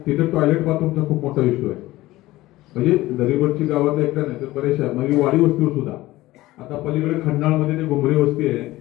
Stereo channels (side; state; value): right; quieter; 17.6 dB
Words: तिथे टॉयलेट बाथरूमचा खूप मोठा इश्यू आहे. म्हणजे दरिवडची गावातल्या एकदा नाही तर बरेचशा म्हणजे वाडी वस्तीवर सुद्धा. आता पलीकडे खंडाळमध्ये ते घुमरी वस्ती आहे,